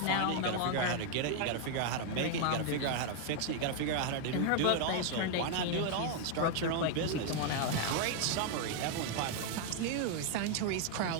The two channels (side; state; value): both; different; correlation 0.00